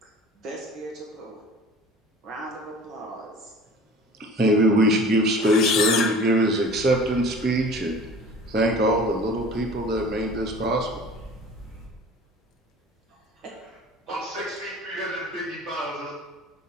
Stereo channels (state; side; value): normal; both; correlation 0.43